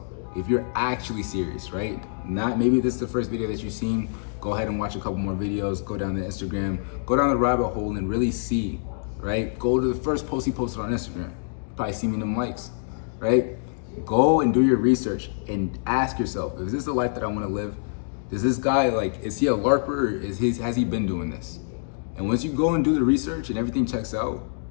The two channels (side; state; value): right; silent; digital silence